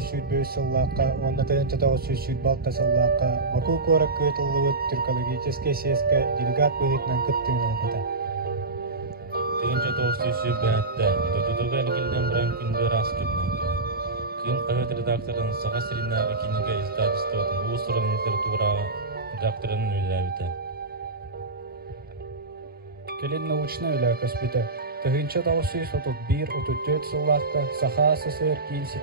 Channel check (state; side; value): quieter; left; 3.3 dB